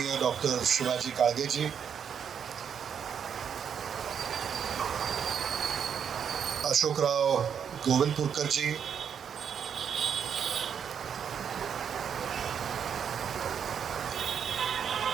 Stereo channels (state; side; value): quieter; left; 7.7 dB